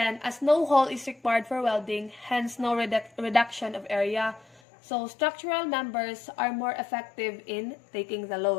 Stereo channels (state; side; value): drops out; right; at 4.6 s